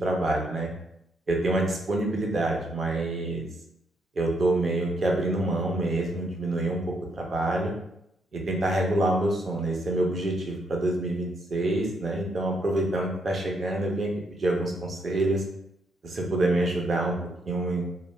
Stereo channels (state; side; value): normal; both; correlation 0.75